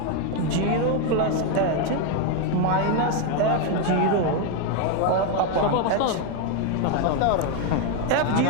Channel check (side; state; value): both; different; correlation 0.01